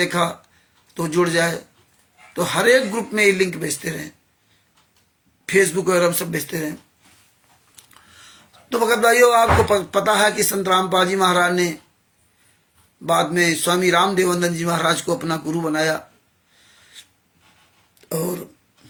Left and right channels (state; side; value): identical; both; correlation 1.00